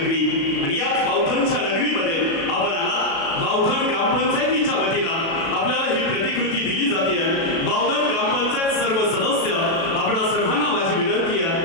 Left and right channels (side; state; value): right; late; 36 ms